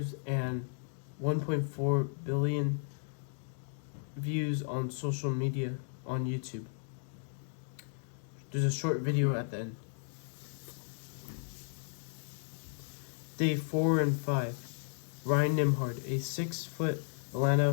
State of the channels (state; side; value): silent; right; digital silence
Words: and 1.4 billion views on social media on YouTube. There's a short video at the end. Day 4 and 5. Ryan Nembhard, a 6-foot